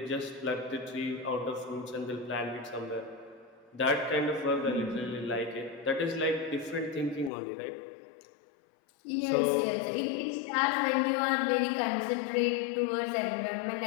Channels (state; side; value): drops out; right; at 7.3 s